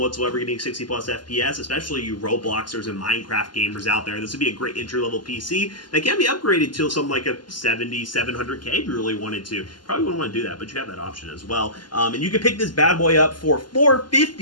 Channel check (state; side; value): late; right; 0.71 ms